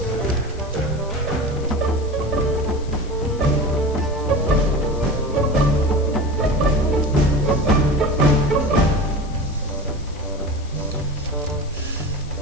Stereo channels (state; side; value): noise; left; hiss, 23 dB below the sound